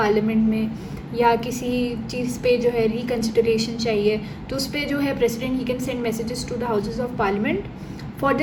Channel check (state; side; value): identical; both; correlation 1.00